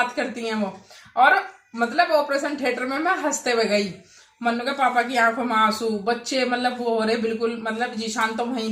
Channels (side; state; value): both; identical; correlation 1.00